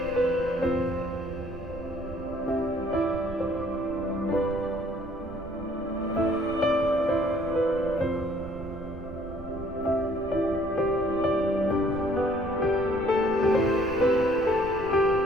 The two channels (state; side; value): noise; right; rumble, 13 dB below the sound